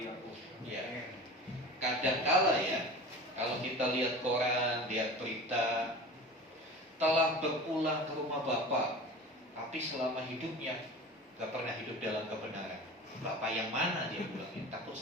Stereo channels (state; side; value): normal; both; correlation 0.35